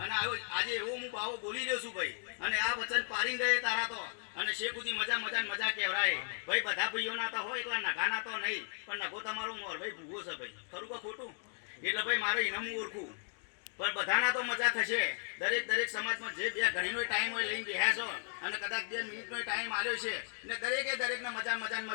આજે એવો હું બાવો બોલી રહ્યો છું ભાઈ અને આ વચન પાડી ગયે તારા તો અને શેખુદી મજા મજા ને મજા કહેવાય ભાઈ બધા ભાઈઓના તો હોય એકલા નગાના તો નહીં પણ નગો તમારો મોર ભાઈ ભૂગો છે ભાઈ ખરું કે ખોટું એટલે ભાઈ મારે ઇનામ હું ઓળખું પણ બધાના તો મજા થશે દરેક સમાજમાં જે બે ઘડીનો ટાઈમ હોય લઈને બેહ્યા છો અને કદાચ 2 મિનિટનો ટાઈમ આવ્યો છે ને દરેકને મજા મજા ને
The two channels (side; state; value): right; silent; 54 dB below the other